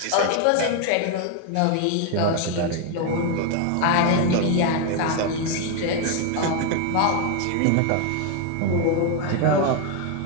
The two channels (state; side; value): different; both; correlation 0.01